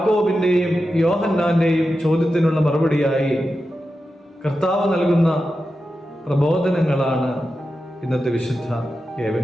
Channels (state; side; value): normal; both; correlation 0.91